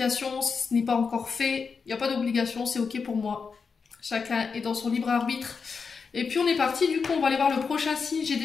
si ce n'est pas encore fait. Il n'y a pas d'obligation, c'est ok pour moi. Chacun est dans son libre arbitre. Et puis on est parti, du coup on va aller voir le prochain signe. J'ai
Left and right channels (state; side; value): quieter; right; 5.4 dB